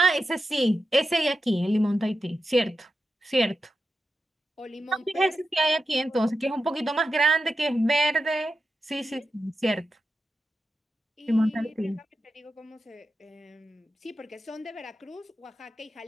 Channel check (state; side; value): normal; both; correlation 0.89